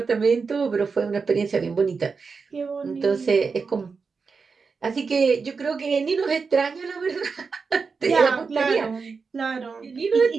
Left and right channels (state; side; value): quieter; left; 5.0 dB